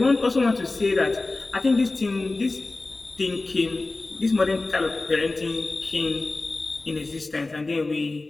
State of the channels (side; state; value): right; quieter; 3.2 dB